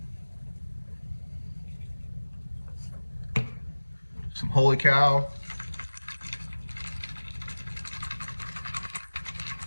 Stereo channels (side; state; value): both; inverted; correlation -1.00